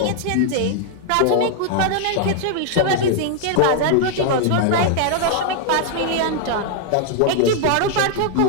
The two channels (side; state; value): both; different; correlation 0.00